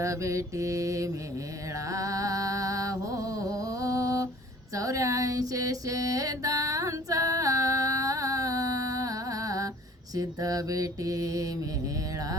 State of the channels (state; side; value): normal; both; correlation 0.51